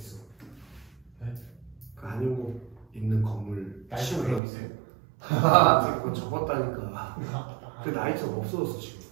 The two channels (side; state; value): left; drops out; at 4.4 s